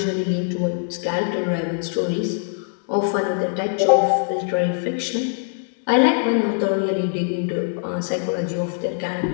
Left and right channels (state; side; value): silent; right; digital silence